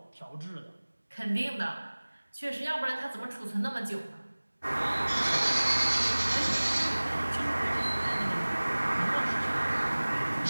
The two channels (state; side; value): inverted; both; correlation -1.00